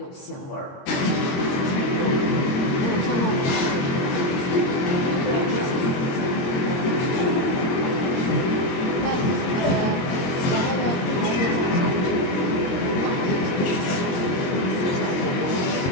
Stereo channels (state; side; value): late; right; 22 ms